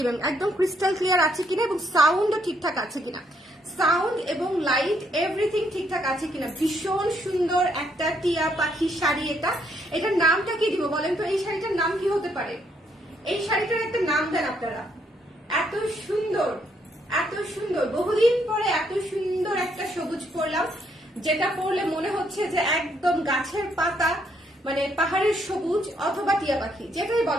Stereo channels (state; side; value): normal; both; correlation 0.72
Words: একদম ক্রিস্টাল ক্লিয়ার আছে কিনা এবং সাউন্ডও ঠিকঠাক আছে কিনা, সাউন্ড এবং লাইট এভরিথিং ঠিকঠাক আছে কিনা। ভীষণ সুন্দর একটা টিয়া পাখি শাড়ি। এটার নামটা কি দিব বলেন তো? এই শাড়িটার নাম কি হতে পারে? এই শাড়িটার একটা নাম দেন আপনারা। এত সুন্দর, এত সুন্দর, বহুদিন পরে এত সুন্দর একটা সবুজ পরলাম, যেটা পরলে মনে হচ্ছে যে একদম গাছের পাতা, মানে পাহাড়ের সবুজ অথবা টিয়া পাখি, যেটাই